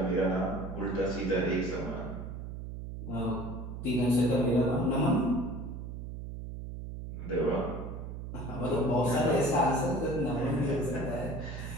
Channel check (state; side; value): noise; right; hum, 8 dB below the sound